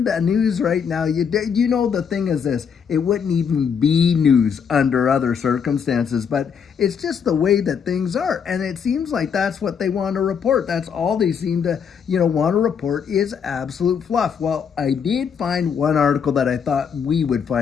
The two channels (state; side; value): quieter; right; 7.0 dB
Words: the news right now. The thing is this. It wouldn't even be news under other circumstances. But it's just the way that things are. And it seems like that's what they want to report. That's all they seem to, want to report is absolute fluff. Well, I did find one article that I thought we would